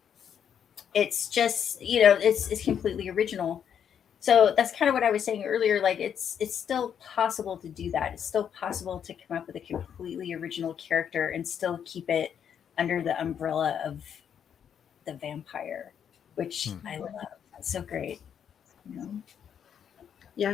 It's just, you know, it's completely original. So that's kind of what I was saying earlier. Like it's still possible to do that. It's still possible to come up with a completely original character and still keep it under the umbrella of the vampire, which I love. That's so great. You know? Yeah, I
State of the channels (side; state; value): right; quieter; 8.4 dB